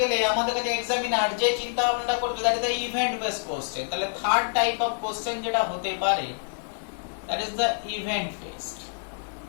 গেলে আমাদের কাছে এক্সামিনার যে চিন্তা ভাবনা করবে that is the event base question. তাহলে থার্ড টাইপ অফ কোশ্চেন যেটা হতে পারে that is the event based.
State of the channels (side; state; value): right; silent; digital silence